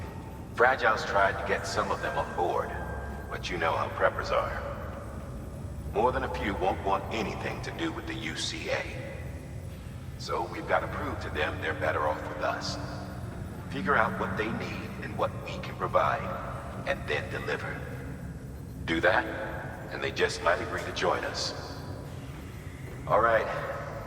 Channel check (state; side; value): identical; both; correlation 1.00